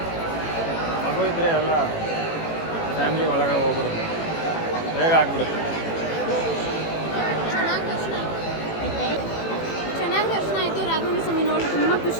ಮಗು ಇದ್ದರೆ ಎಲ್ಲ ಫ್ಯಾಮಿಲಿ ಒಳಗೆ ಹೋಗ್ಬಿಡುತ್ತೆ, ಬೇಗ ಆಗ್ಬಿಡುತ್ತೆ.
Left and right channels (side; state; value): right; late; 18 ms